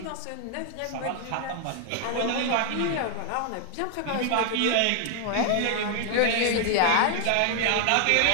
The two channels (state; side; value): different; both; correlation 0.00